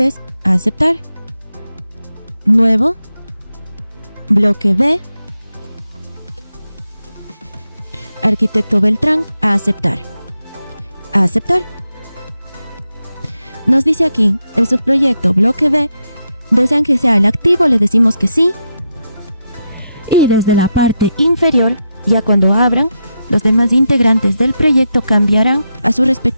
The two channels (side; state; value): both; inverted; correlation -0.84